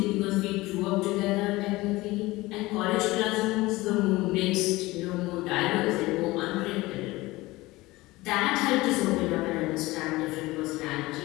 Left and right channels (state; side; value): quieter; right; 20.0 dB